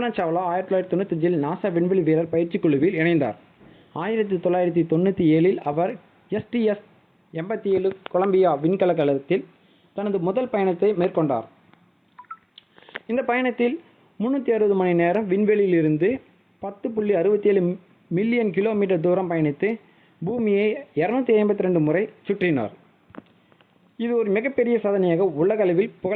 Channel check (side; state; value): both; identical; correlation 1.00